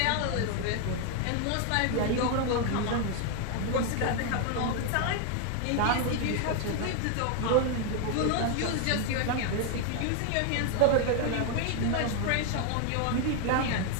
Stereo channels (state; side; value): different; both; correlation 0.01